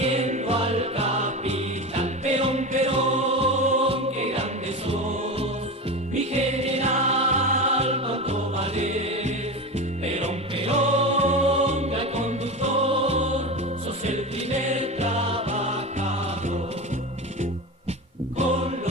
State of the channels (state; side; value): normal; both; correlation 0.24